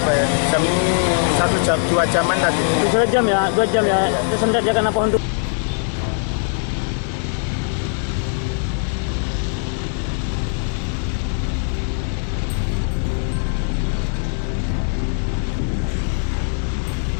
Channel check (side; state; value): right; silent; 65 dB below the other